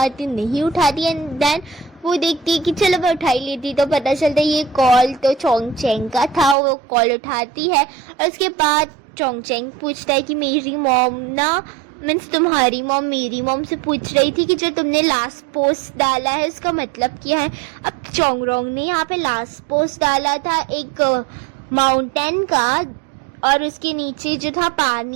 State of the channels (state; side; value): drops out; left; at 6.6 s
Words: एंड देन वो देखती है कि चलो मैं उठा ही लेती, तो पता चलता है ये कॉल तो चोंगचेंग का था। वो कॉल उठाती है और उसके बाद चोंगचेंग पूछता है कि मेरी मॉम ना, मीन्स तुम्हारी मॉम मेरी मॉम से पूछ रही थी कि जो तुमने लास्ट पोस्ट डाला है उसका मतलब क्या है। अब चोंगरोंग ने यहाँ पे लास्ट पोस्ट डाला था एक माउंटेन का, और उसके नीचे जो था